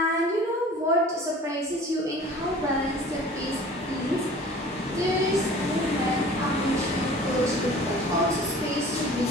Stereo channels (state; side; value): normal; both; correlation 0.45